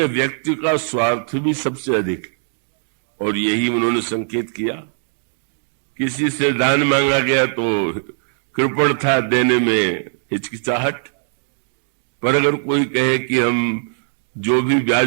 व्यक्ति का स्वार्थ भी सबसे अधिक है। और यही उन्होंने संकेत किया। किसी से दान मांगा गया तो कृपण था, देने में हिचकिचाहट। पर अगर कोई कहे कि हम जो भी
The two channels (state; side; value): silent; left; digital silence